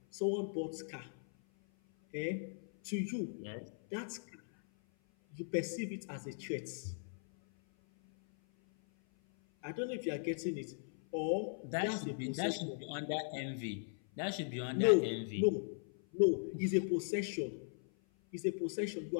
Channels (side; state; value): right; silent; 52 dB below the other